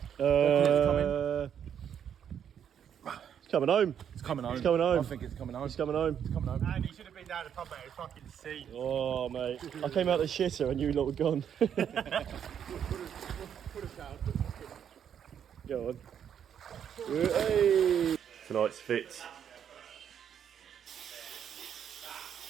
It's coming home. It's coming home. It's coming home. I think it's coming home. It's coming home. It's coming home. Andy should have been down the pub, mate. It's fucking sea. Oh, mate. I came out the shitter and you lot were gone. Go on. Hey. Tonight's fit.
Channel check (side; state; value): left; quieter; 8.7 dB